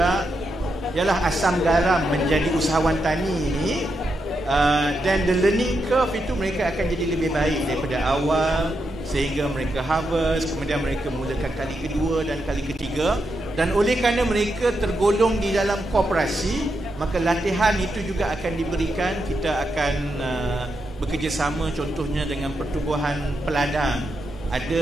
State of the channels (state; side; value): normal; both; correlation 0.84